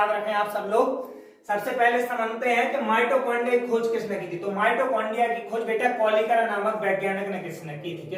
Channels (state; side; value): identical; both; correlation 1.00